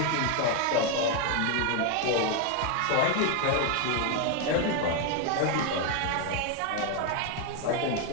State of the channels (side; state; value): both; different; correlation 0.01